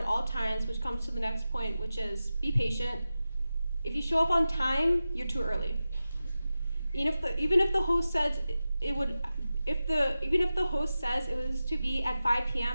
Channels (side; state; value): both; inverted; correlation -0.94